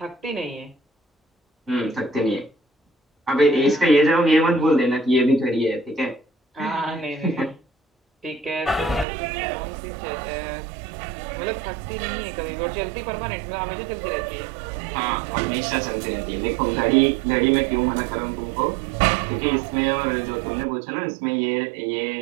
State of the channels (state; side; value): drops out; left; at 9.1 s